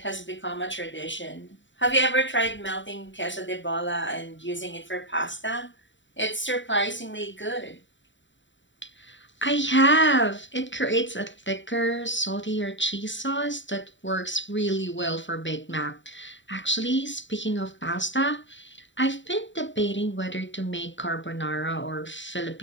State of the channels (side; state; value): right; late; 0.54 ms